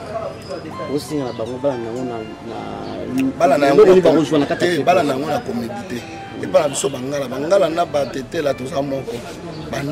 osinga na bango bala na yango na comédie te epa na biso bangala na batetela toza moko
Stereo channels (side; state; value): both; identical; correlation 1.00